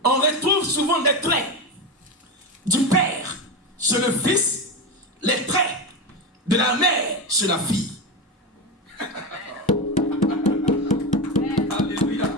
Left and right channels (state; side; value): normal; both; correlation 0.17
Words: on retrouve souvent des traits du père chez le fils, les traits de la mère chez la fille. Alléluia.